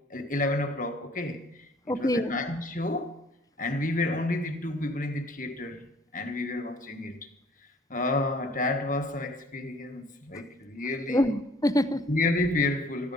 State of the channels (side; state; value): both; normal; correlation 0.56